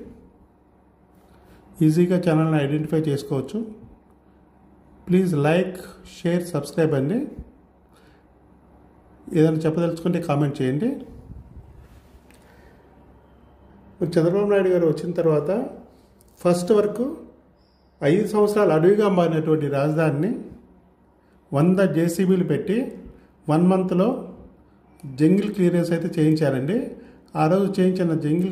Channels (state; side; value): identical; both; correlation 1.00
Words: ఈజీగా ఛానల్ని ఐడెంటిఫై చేసుకోవచ్చు. ప్లీజ్ లైక్, షేర్, సబ్స్క్రైబ్ అండి. ఏదైనా చెప్పదలుచుకుంటే కామెంట్ చేయండి. చంద్రబాబు నాయుడు గారు వచ్చిన తర్వాత ఫస్ట్ వరకు 5 సంవత్సరాలు అడవిగా మారినటువంటి రాజధానిని 100 జేసీబీలు పెట్టి 1 మంత్లో జంగిల్ క్లియరెన్స్ అయితే చేయించారండి. ఆ రోజు చేయించిన